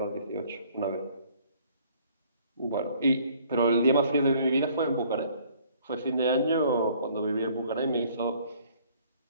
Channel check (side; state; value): both; inverted; correlation -0.58